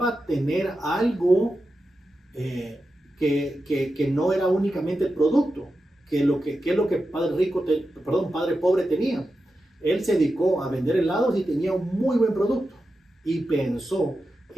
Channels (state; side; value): normal; both; correlation 0.90